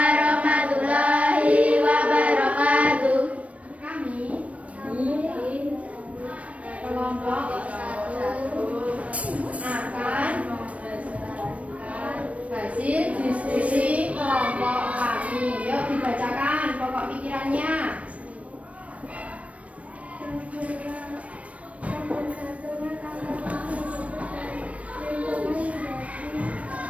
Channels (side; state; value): left; late; 0.065 ms